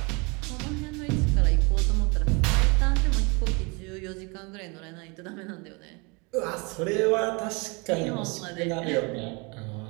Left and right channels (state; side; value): quieter; left; 29.6 dB